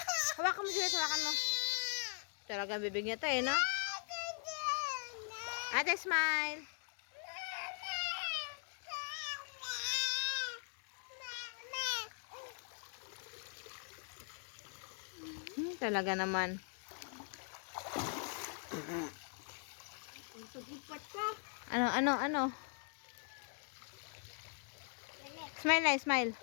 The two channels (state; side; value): silent; right; 51 dB below the other